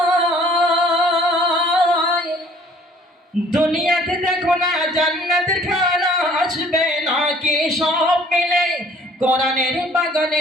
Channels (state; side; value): normal; both; correlation 0.55